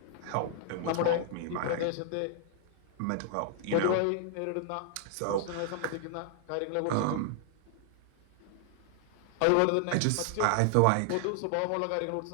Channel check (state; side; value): different; both; correlation 0.00